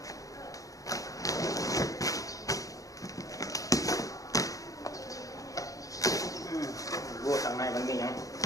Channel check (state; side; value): late; right; 0.17 ms